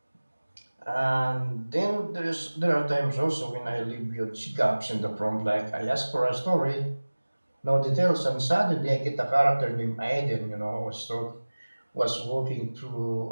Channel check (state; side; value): inverted; both; correlation -1.00